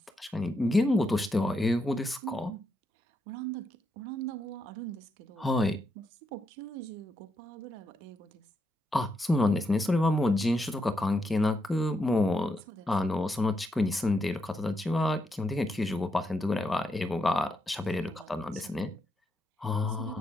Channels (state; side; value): normal; both; correlation 0.81